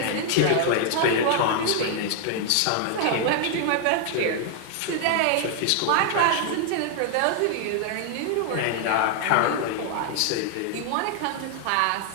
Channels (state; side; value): different; both; correlation 0.00